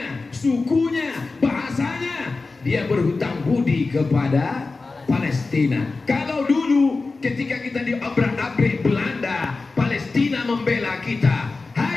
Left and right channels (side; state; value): right; quieter; 3.8 dB